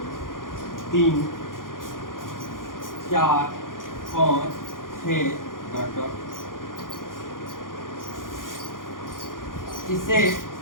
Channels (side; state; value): right; late; 0.90 ms